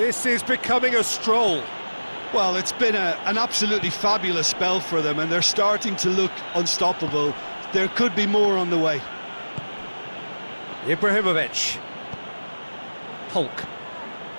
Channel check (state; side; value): inverted; both; correlation -1.00